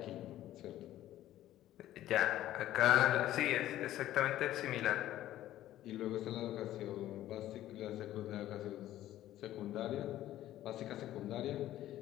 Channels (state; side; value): quieter; right; 13.6 dB